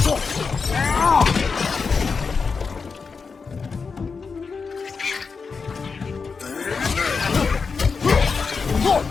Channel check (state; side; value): quieter; right; 5.1 dB